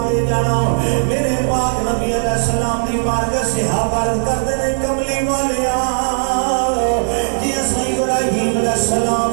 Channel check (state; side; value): silent; left; digital silence